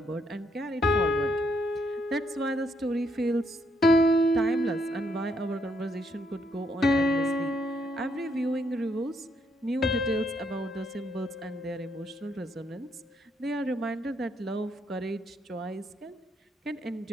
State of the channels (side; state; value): both; normal; correlation 0.74